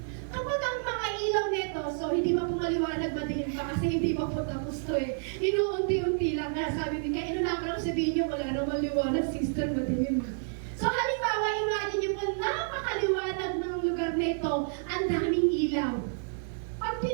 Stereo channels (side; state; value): left; silent; 58 dB below the other